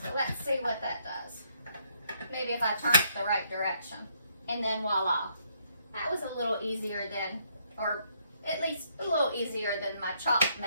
let's see what that does. Maybe if I turn it the right direction. And then voila. That was a little easier than, or at least a little easier than my chop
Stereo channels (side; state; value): both; inverted; correlation -0.71